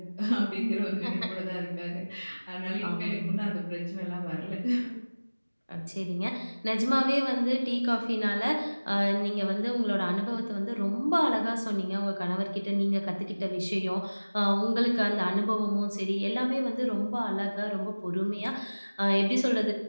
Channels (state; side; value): inverted; both; correlation -1.00